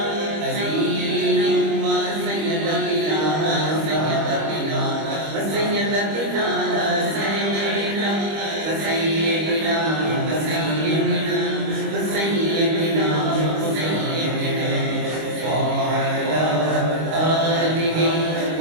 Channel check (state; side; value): late; left; 25 ms